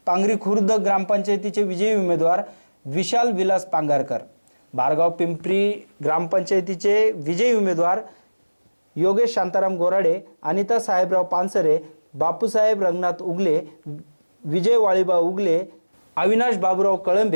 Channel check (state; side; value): inverted; both; correlation -1.00